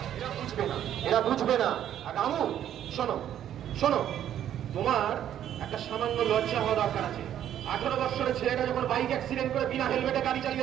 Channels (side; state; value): left; quieter; 10.7 dB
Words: এরা বুঝবে না, এরা বুঝবে না। আর রামু শোনো, তোমার একটা সামান্য লজ্জা হওয়া দরকার আছে। 18 বছরের ছেলেটা যখন বাইক অ্যাক্সিডেন্ট করে বিনা হেলমেটে গাড়ি